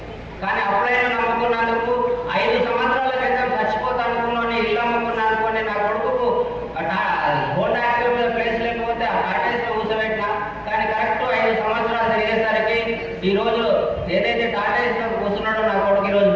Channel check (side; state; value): both; identical; correlation 1.00